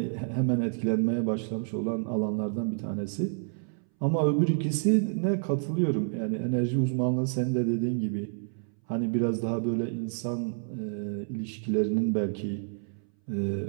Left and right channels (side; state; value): left; silent; 59 dB below the other